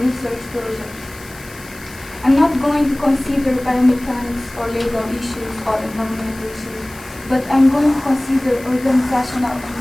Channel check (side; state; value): left; noise; hiss, 20 dB below the sound